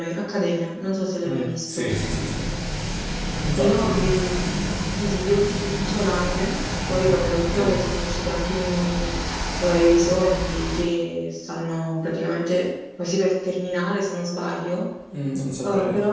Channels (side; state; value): both; identical; correlation 1.00